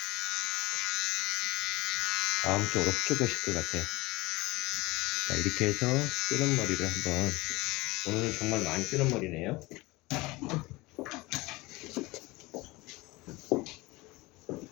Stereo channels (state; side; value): quieter; right; 21.8 dB